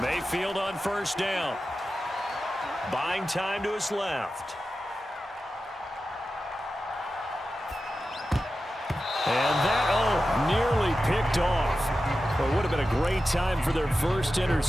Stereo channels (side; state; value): both; normal; correlation 0.92